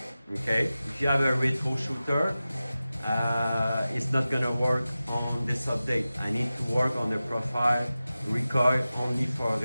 Okay, if you have a retro shooter, it's not gonna work on this update. I need to work on the profile recoil only for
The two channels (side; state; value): both; inverted; correlation -0.95